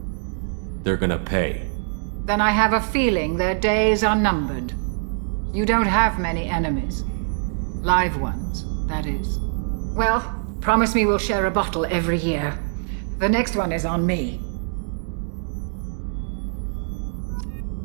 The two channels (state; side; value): silent; left; digital silence